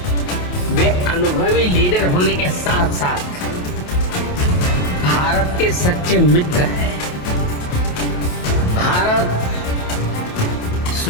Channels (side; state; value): right; late; 28 ms